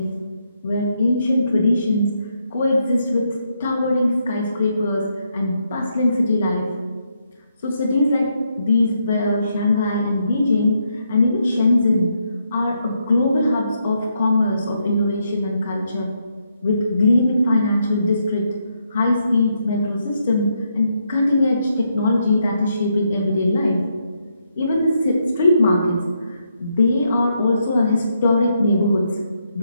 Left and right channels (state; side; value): inverted; both; correlation -0.78